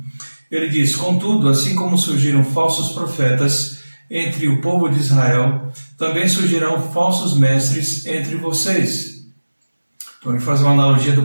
Ele diz: "Contudo, assim como surgiram falsos profetas entre o povo de Israel, também surgirão falsos mestres entre vocês." Então ele faz uma analogia do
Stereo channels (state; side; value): inverted; both; correlation -1.00